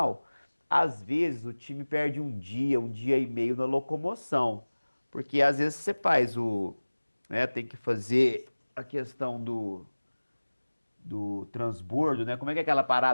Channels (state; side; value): inverted; both; correlation -1.00